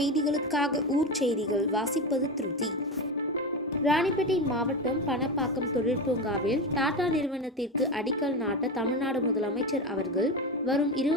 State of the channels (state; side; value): normal; both; correlation 0.19